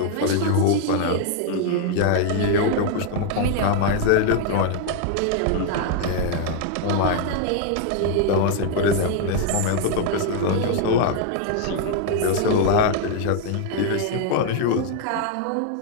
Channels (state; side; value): different; both; correlation 0.00